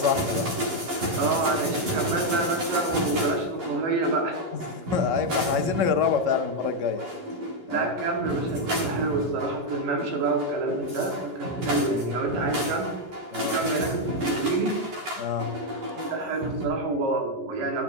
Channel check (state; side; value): late; left; 11 ms